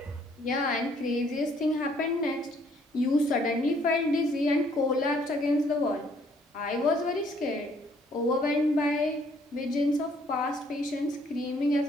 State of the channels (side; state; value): both; normal; correlation 0.64